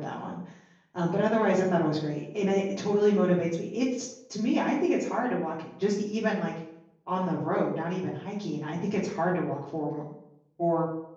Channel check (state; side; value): identical; both; correlation 1.00